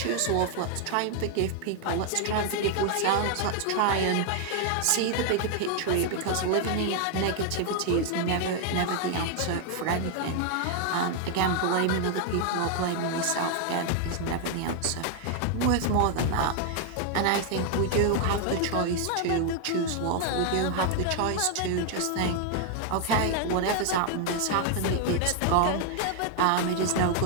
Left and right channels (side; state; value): both; different; correlation 0.00